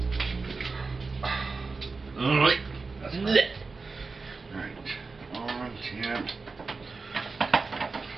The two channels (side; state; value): left; quieter; 4.2 dB